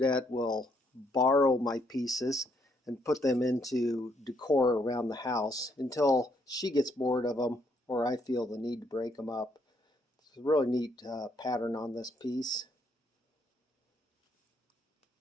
will borrow my pieces and put them into decor around the house until she gets bored of them or I feel the need to break them up. It's a really neat pattern on this piece,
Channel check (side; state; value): both; normal; correlation 0.72